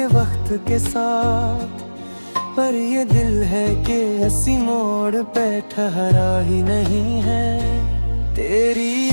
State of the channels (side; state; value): both; inverted; correlation -1.00